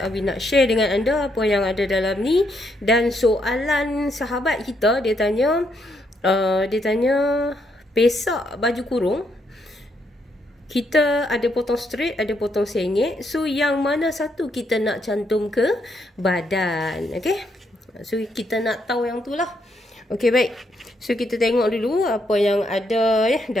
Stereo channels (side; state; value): both; normal; correlation 0.76